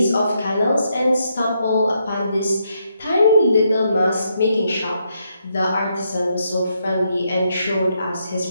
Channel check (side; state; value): both; inverted; correlation -0.78